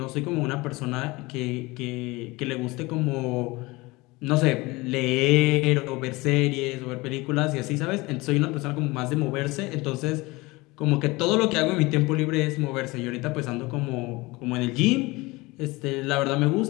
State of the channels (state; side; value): quieter; right; 22.6 dB